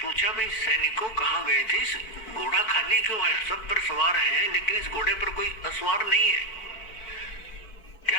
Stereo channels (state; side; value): late; right; 4.6 ms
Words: पूछा भाई सैनिकों कहाँ गए थे, इस घोड़ा खाली क्यों है? सब पर सवार हैं लेकिन इस घोड़े पर कोई असवार नहीं है,